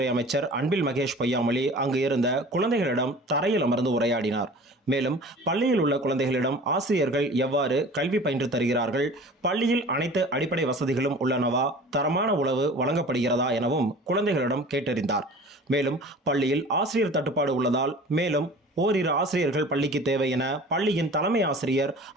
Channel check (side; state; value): both; normal; correlation 0.42